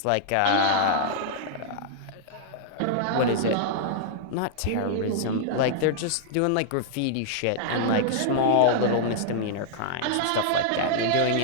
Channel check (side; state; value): both; different; correlation -0.01